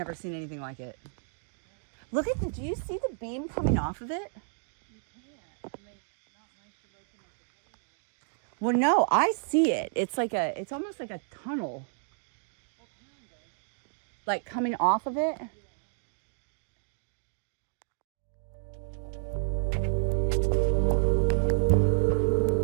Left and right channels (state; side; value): silent; left; 57 dB below the other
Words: seen anything like it. Look at do you see the beam coming off of it? You can't. I mean, not unless you're looking at the camera. Well, no, I see it. It's like it's almost like a tunnel. What kind of? Like coming off of it? Yeah.